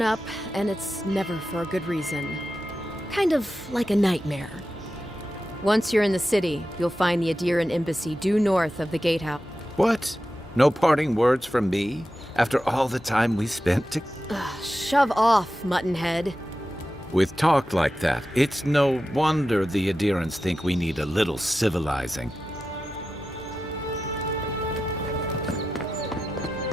up, and it's never for a good reason. Kind of like a nightmare. Once you're in the city, you'll find the Adiran embassy due north of the gatehouse. What? No parting words from me? After all the time we spent to... Shove off, Muttonhead. With talk like that, it's no wonder the Adirans think we need a little civilizing.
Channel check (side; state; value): both; normal; correlation 0.92